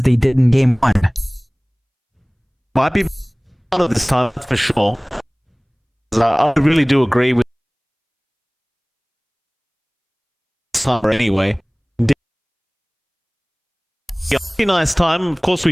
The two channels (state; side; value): identical; both; correlation 1.00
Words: they did in game 1. Might be part of this time for sure. I really do agree with summer anyway. Yeah, pretty nice time. Of course, we